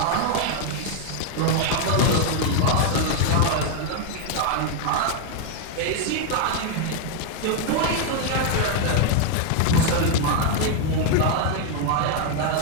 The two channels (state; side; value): different; both; correlation 0.00